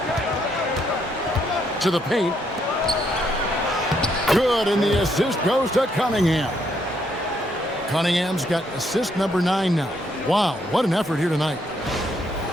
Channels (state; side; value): normal; both; correlation 0.73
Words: To the paint. Good, and the assist goes to Cunningham. Cunningham's got assist number 9 now. Wow, what an effort here tonight.